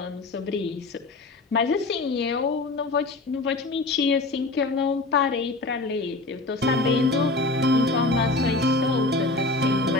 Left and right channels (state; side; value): quieter; right; 3.1 dB